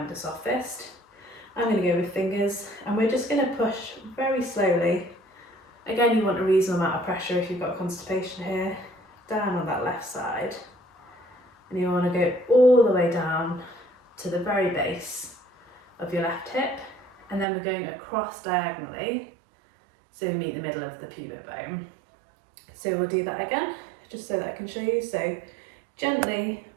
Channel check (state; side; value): drops out; left; at 17.4 s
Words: a soft fist. I'm going to go with fingers, and we're just going to push very slowly. Again, you want a reasonable amount of pressure if you've got constipation here, down on that left side. And you want to go all the way down to the very base of your left hip, and then we're going across diagonally, so we meet the middle of the pubic bone. So we'll do that again, just so that I can show you. So Gently,